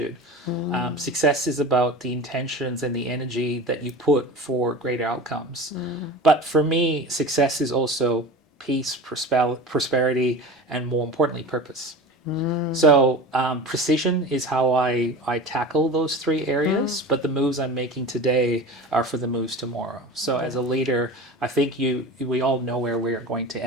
Success is about the intentions and the energy that you put for greater outcomes. But for me, success is also peace, prosperity, and more importantly, purpose. So precision is how I tackle those three areas, but the moves I'm making today are for the moves tomorrow. So as a leader, I think we all know where we're going to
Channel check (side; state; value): both; normal; correlation 0.33